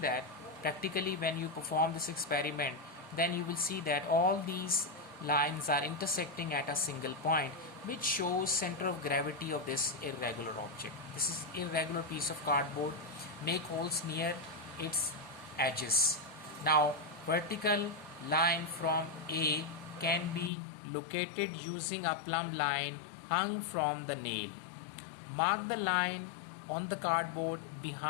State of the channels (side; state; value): right; drops out; at 20.5 s